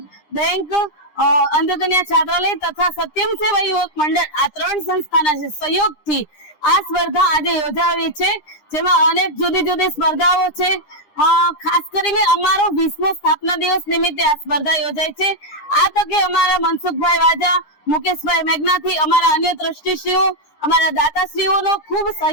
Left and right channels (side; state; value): right; late; 9.9 ms